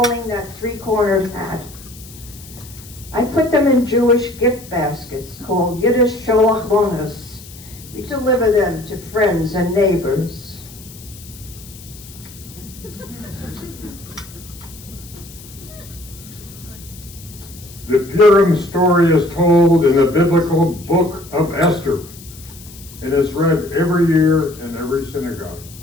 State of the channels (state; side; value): noise; left; hiss, 19 dB below the sound